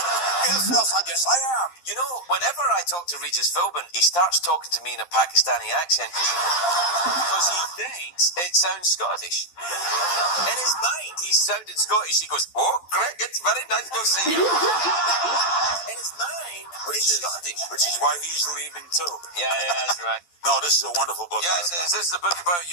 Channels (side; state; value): right; late; 12 ms